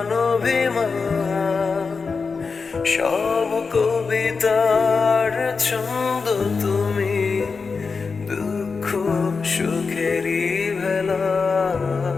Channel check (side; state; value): right; quieter; 4.8 dB